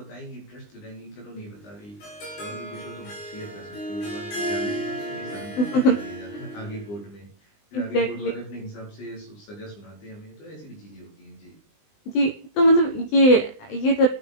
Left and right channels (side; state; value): right; late; 20 ms